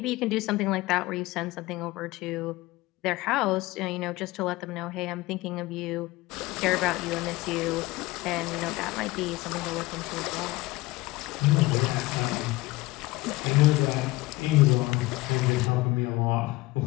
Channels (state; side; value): quieter; right; 19.9 dB